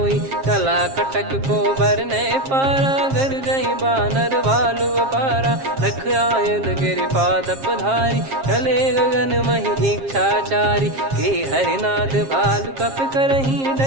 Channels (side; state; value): left; late; 7.5 ms